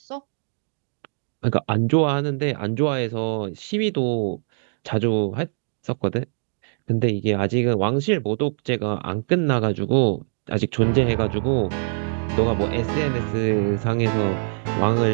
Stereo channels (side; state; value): left; silent; 63 dB below the other